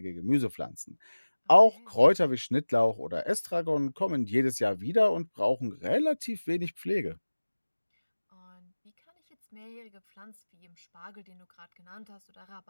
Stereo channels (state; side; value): inverted; both; correlation -1.00